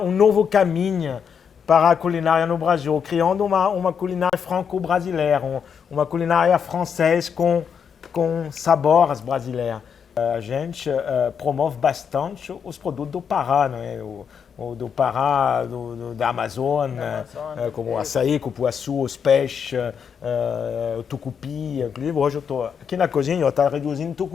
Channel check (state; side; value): quieter; right; 7.1 dB